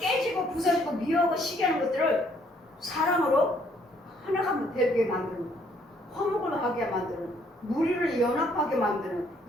부서지고 미워하고 시기하는 것들을 사랑으로 하나가 되게 만드는 화목을 하게 만드는 무리를 연합하게 만드는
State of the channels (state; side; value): normal; both; correlation 0.66